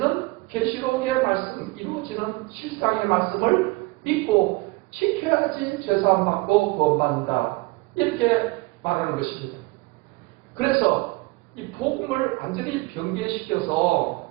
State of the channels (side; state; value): left; quieter; 23.7 dB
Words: 계시록의 말씀, 이루어지는 실상의 말씀을 믿고 지켜야지 죄사함 받고 구원받는다. 이렇게 말하는 것입니다. 그래서 이 복음을 완전히 변개시켜서